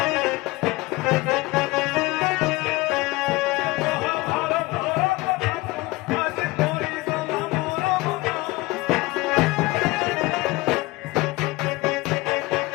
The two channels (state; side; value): quieter; right; 21.1 dB